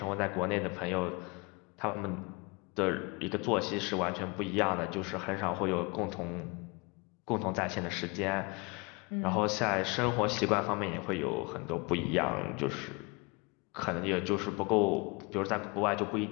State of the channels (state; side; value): quieter; right; 28.4 dB